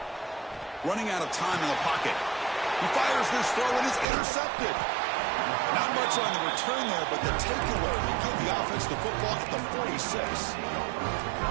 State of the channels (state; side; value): drops out; left; at 4.0 s